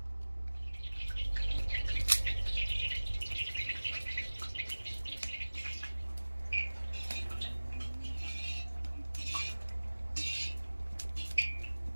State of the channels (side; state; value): both; inverted; correlation -1.00